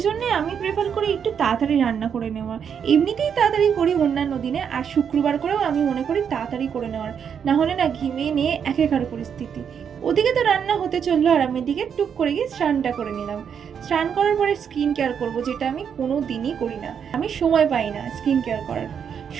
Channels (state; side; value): quieter; left; 7.6 dB